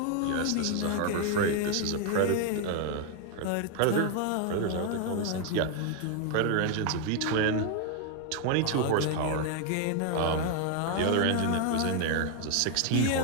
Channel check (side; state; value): both; different; correlation 0.00